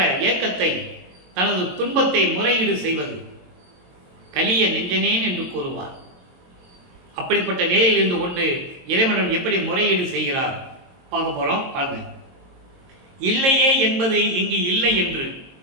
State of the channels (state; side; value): late; left; 22 ms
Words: ஏக்கத்தை, தனது துன்பத்தை முறையீடு செய்வது. கலிய நெஞ்சனேன் என்று கூறுவார். அப்படிப்பட்ட நிலையில் இருந்து கொண்டு இறைவன் எப்படி முறையீடு செய்கிறார் பார்க்க போறோம். பாருங்க. இல்லையே என்பது இங்கு இல்லை என்று,